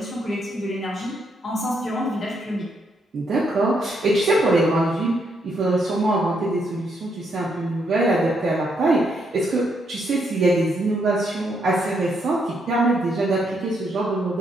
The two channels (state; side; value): normal; both; correlation 0.76